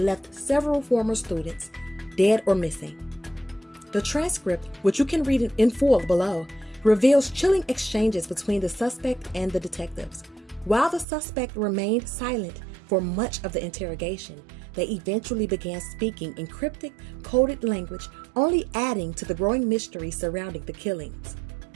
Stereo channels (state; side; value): drops out; left; at 11.1 s